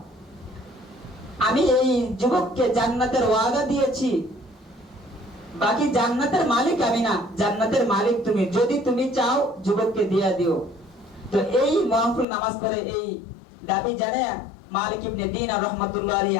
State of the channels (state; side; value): drops out; right; at 12.2 s